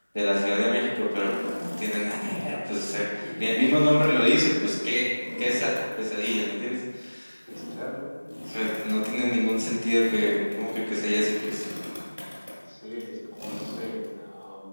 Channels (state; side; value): inverted; both; correlation -1.00